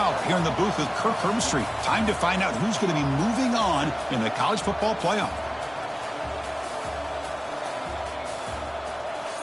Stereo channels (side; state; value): both; identical; correlation 1.00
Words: here in the booth with Kirk Herbstreit. Time to find out who's going to be moving on in the college football playoff.